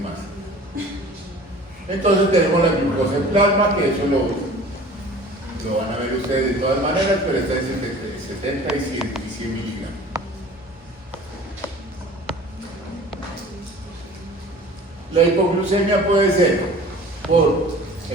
más. Entonces tenemos la glucosa en plasma, que eso lo van a ver ustedes de todas maneras, pero está en 70 y 100 miligramos. La hipoglucemia puede ser por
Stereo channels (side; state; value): both; normal; correlation 0.44